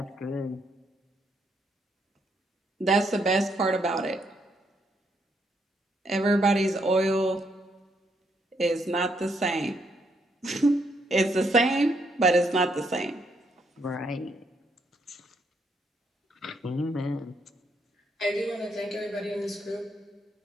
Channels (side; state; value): both; normal; correlation 0.75